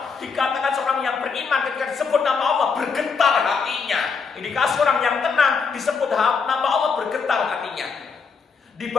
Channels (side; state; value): right; quieter; 5.4 dB